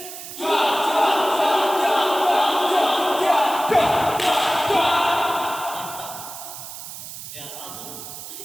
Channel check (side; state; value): right; noise; hiss, 11 dB below the sound